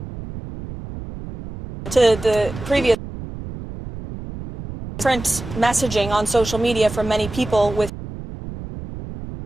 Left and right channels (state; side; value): noise; right; rumble, 11 dB below the sound